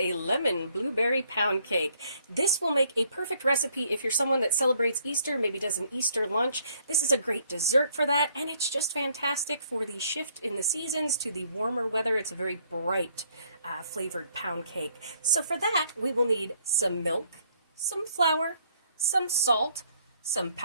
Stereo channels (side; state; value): both; inverted; correlation -0.67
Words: lemon blueberry pound cake. This will make a perfect recipe if you're someone that celebrates Easter, maybe does an Easter lunch. This is a great dessert for that, and it's just fantastic for the shift in the seasons to the warmer weather. It's a very bright flavored pound cake. So for that, we will need some milk, some flour, some salt, some